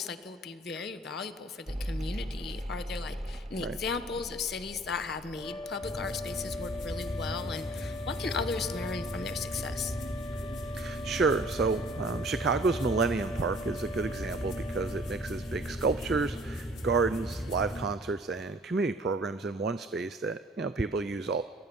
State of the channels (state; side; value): normal; both; correlation 0.54